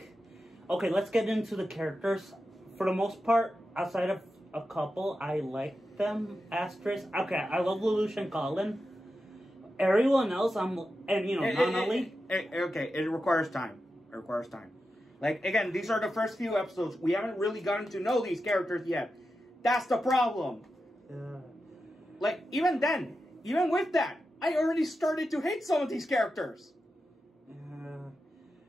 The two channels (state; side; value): normal; both; correlation 0.90